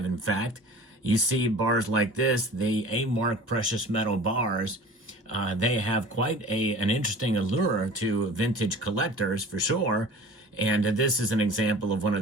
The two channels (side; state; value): both; normal; correlation 0.42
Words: In fact, you see bars like this, the A-Mark Precious Metal bars. They have quite an interesting allure to vintage collectors for sure. And this is an example of one of